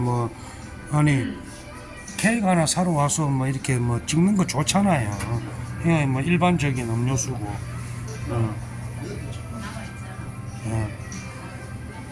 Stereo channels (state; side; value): identical; both; correlation 1.00